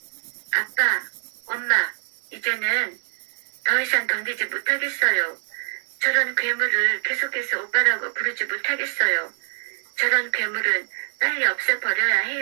아빠, 엄마, 이제는 더 이상 견디지 못하겠어요. 저런 괴물을 계속해서 오빠라고 부르지 못하겠어요. 저런 괴물은 빨리 없애버려야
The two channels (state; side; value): silent; left; 62 dB below the other